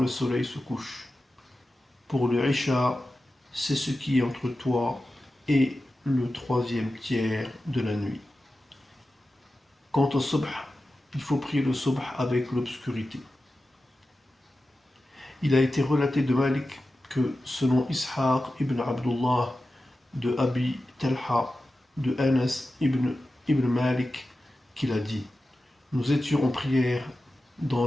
soleil se couche. Pour le Isha, c'est ce qui est entre toi et le 3e tiers de la nuit. Quant au Subh, il faut prier le Subh avec l'obscurité. Il a été relaté de Malik que selon Ishaq ibn Abdullah, de Abi Talha, de Anas ibn Malik, qu'il a dit: nous étions en prière dans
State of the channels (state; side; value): normal; both; correlation 0.93